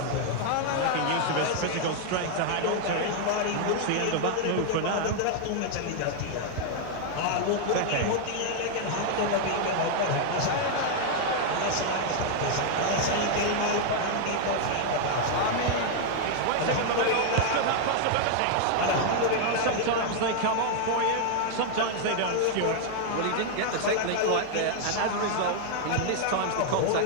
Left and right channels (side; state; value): both; different; correlation 0.00